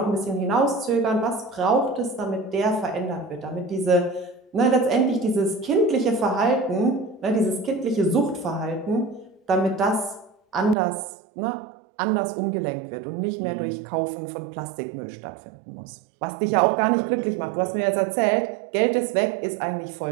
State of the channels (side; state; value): left; drops out; at 10.8 s